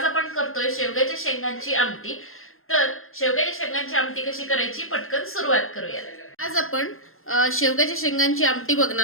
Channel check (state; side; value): late; right; 0.61 ms